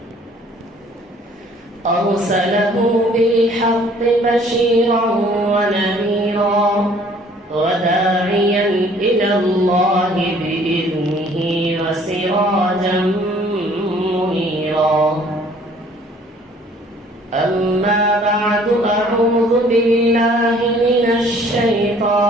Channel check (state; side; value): normal; both; correlation 0.56